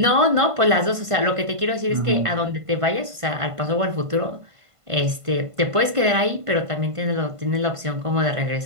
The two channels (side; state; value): left; late; 1.5 ms